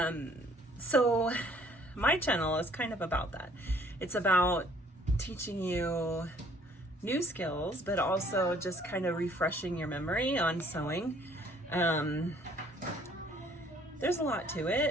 So my channel is kind of about that. It's about teaching you new skills, but also just kind of refreshing your memory on sewing. There's a lot to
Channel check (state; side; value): normal; both; correlation 0.59